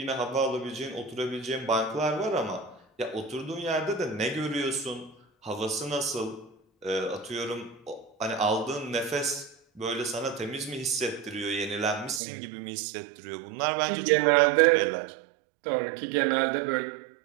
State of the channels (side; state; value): left; drops out; at 12.2 s